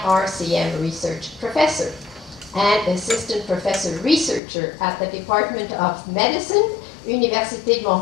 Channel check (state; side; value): drops out; right; at 4.4 s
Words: research professor and assistant professor researcher at the Department of Medicine, Université de